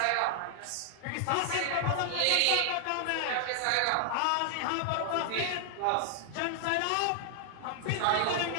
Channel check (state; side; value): different; both; correlation 0.00